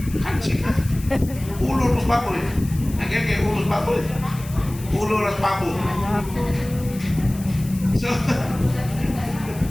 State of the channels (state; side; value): noise; left; hiss, 17 dB below the sound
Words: kansi ka. Ulo ros baboy. Ang kaya ulo ros baboy. Ulo ros baboy. So,